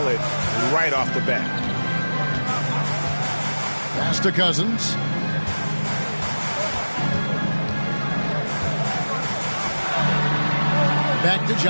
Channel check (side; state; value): both; inverted; correlation -1.00